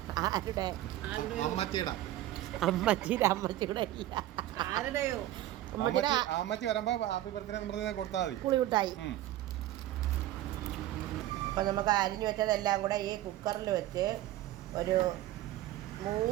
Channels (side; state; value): left; quieter; 14.4 dB